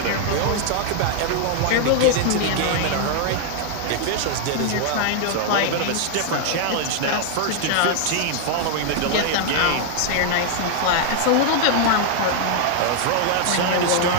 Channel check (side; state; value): both; different; correlation 0.00